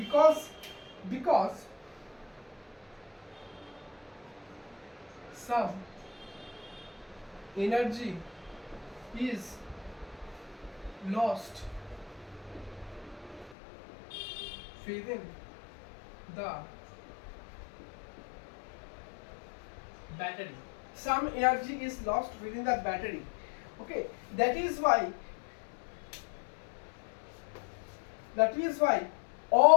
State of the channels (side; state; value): right; drops out; at 13.6 s